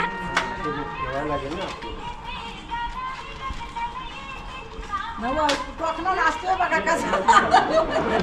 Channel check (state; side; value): identical; both; correlation 1.00